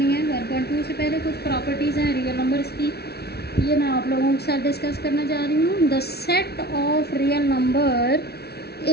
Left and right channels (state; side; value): late; right; 0.47 ms